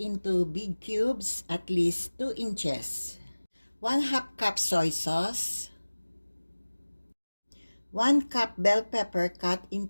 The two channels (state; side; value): inverted; both; correlation -1.00